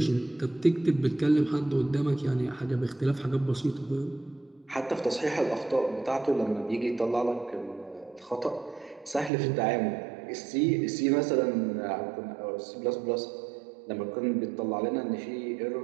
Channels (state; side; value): drops out; left; at 9.3 s